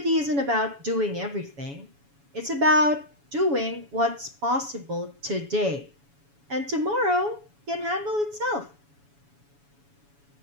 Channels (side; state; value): left; late; 7.1 ms